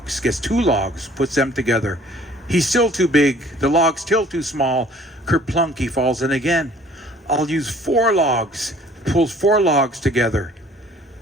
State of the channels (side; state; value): both; normal; correlation 0.54